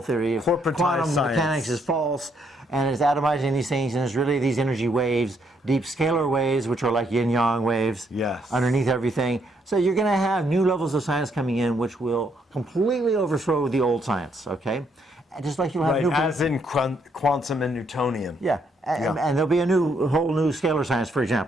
theory of quantum mechanics is false, and it's atomizing these things, and it's really these energy waves, deep scalar waves, which are like yin-yang waves, underneath everything. So you're going to have new levels of science coming in, which will completely overthrow the old science, okay? And just like you'll have new... as in quantum and Newtonian. And there'll be a whole new scalar science, for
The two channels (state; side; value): normal; both; correlation 0.73